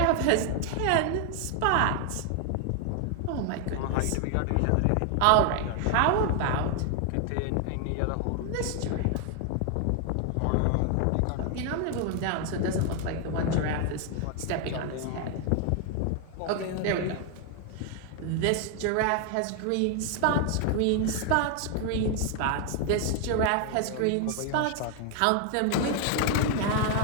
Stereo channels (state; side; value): different; both; correlation 0.00